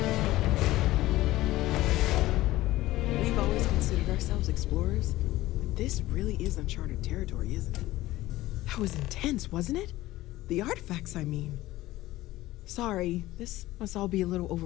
We've always considered ourselves explorers, but this really is uncharted territory, isn't it? That was intense, wasn't it? The artifacts, I mean. Sorry, this must all be a little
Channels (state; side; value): quieter; right; 16.8 dB